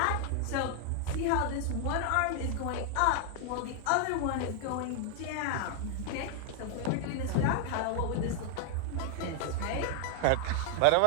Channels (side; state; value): both; different; correlation 0.00